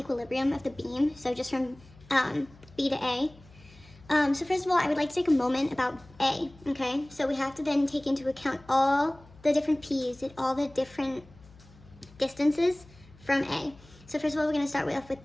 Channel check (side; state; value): left; noise; hum, 24 dB below the sound